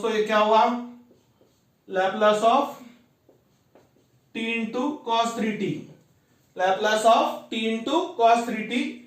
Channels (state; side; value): identical; both; correlation 1.00